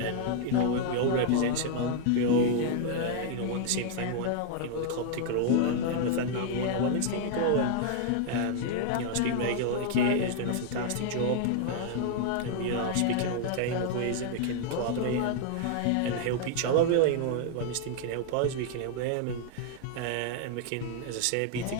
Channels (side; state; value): both; different; correlation 0.00